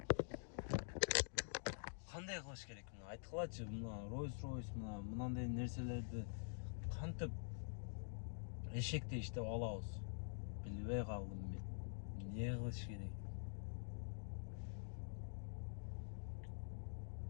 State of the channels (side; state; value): right; silent; digital silence